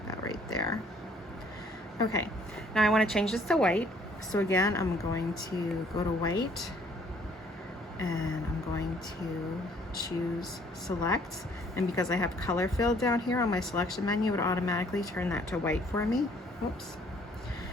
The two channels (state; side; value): normal; both; correlation 0.61